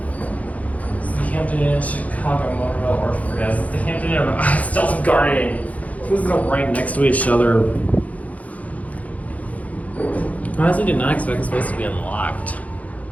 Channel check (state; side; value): late; right; 0.070 ms